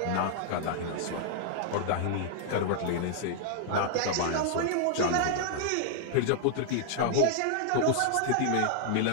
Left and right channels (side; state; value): both; different; correlation -0.01